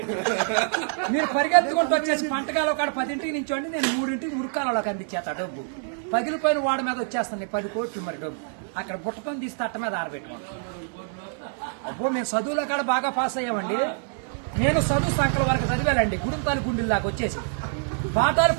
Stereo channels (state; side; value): silent; left; digital silence